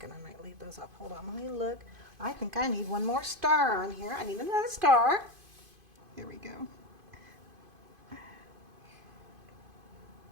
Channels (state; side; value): late; left; 2.5 ms